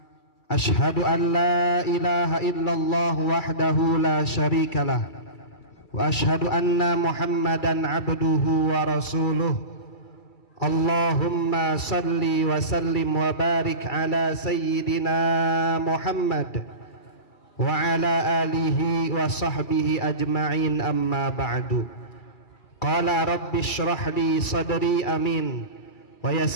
Ashhadu an la ilaha illallah wahdahu la syarikalah wa ashhadu anna Muhammadan abduhu wa rasuluh. Allahumma salli wa sallim wa barik ala sayyidina Muhammad wa ala alihi wa sahbihi ajma'in, amma ba'du. Qala rabbi shrah li sadri amin wa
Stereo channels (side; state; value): right; late; 2.3 ms